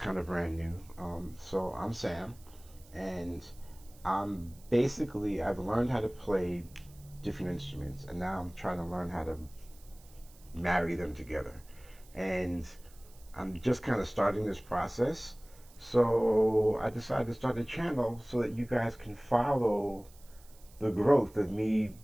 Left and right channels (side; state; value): right; noise; hiss, 25 dB below the sound